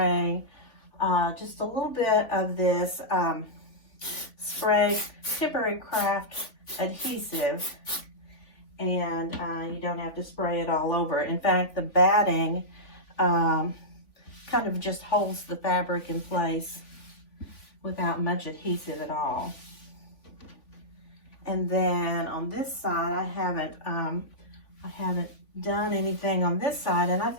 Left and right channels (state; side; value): late; right; 3.5 ms